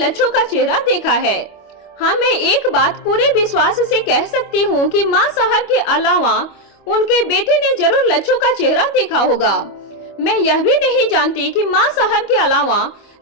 का चेहरा देखा है। हाँ, मैं एक बात पूरे विश्वास से कह सकती हूँ कि माँ साहब के अलावा उनके बेटे ने जरूर लच्छू का चेहरा देखा होगा। मैं यह भी नहीं जानती कि माँ साहब के अलावा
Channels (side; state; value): right; late; 25 ms